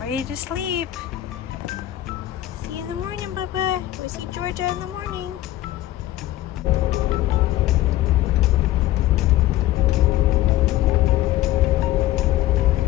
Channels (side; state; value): right; quieter; 14.6 dB